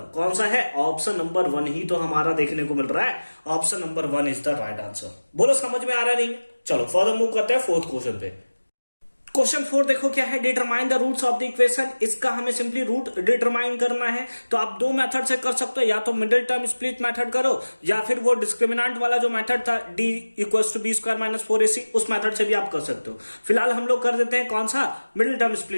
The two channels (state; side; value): inverted; both; correlation -1.00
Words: कौन सा है? ऑप्शन नंबर 1 ही तो हमारा देखने को मिल रहा है। Option number 1 is the right answer. बोलो समझ में आ रहा नहीं? चलो फर्दर मूव करते हैं फोर्थ क्वेश्चन पे। क्वेश्चन 4 देखो क्या है, determine the roots of the equation. इसका हमें सिंपली रूट डिटरमाइन करना है। तो आप दो मेथड से कर सकते हो, या तो मिडिल टर्म स्प्लिट मेथड करो या फिर वो डिस्क्रिमिनेंट वाला जो मेथड था d equals to b² - 4ac, उस मेथड से भी आप कर सकते हो। फिलहाल हम लोग कर देते हैं कौन सा? Middle term